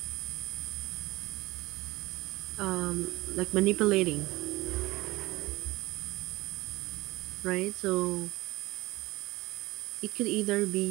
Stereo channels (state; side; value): quieter; left; 19.7 dB